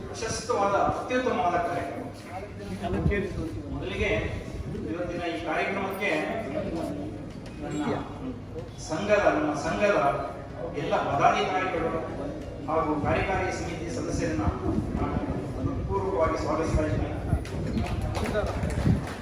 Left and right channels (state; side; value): identical; both; correlation 1.00